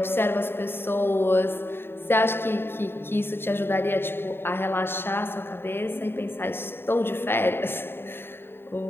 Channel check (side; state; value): right; late; 0.11 ms